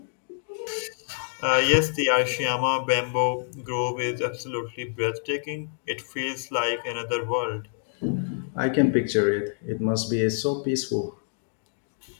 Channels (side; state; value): right; silent; digital silence